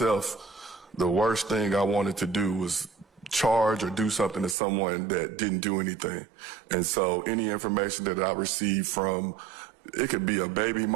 the worst thing I wanted to do was charge or do something to someone that didn't do anything. And so any information that I receive from, it could be a baby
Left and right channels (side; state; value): left; drops out; at 4.5 s